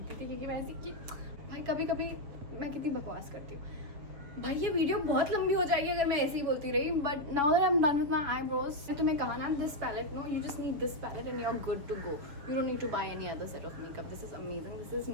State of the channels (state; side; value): late; left; 7.1 ms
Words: थी क्योंकि मैं ऐसी कि भाई कभी कभी मैं कितनी बकवास करती हूँ भाई. ये वीडियो बहुत लंबी हो जाएगी अगर मैं ऐसे ही बोलती रही, but now that I am done with my eyebrows. मैंने तुम्हें कहा ना, this palette, no you just need this palette and you are good to go. You don't need to buy any other set of makeup. This is amazing. This